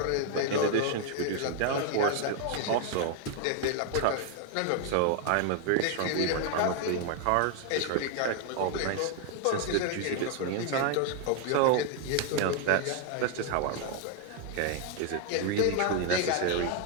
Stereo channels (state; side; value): different; both; correlation 0.01